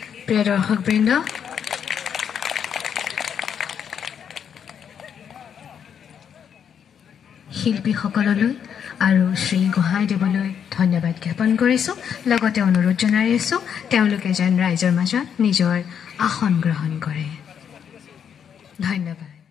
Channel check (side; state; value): right; quieter; 8.0 dB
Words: প্ৰিয় দৰ্শকবৃন্দ শিল্পীসকললৈ আৰু শ্ৰী হোহai দেৱলৈ ধন্যবাদ জ্ঞাপন কৰিছোঁ লগতে অনুৰোধ জনাই আছোঁ তেওঁলোকে যেন ৰাইজৰ মাজত নিজৰ আসন গ্ৰহণ কৰে ধন্যবাদ